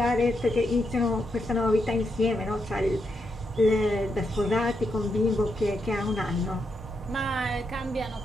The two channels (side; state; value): both; normal; correlation 0.82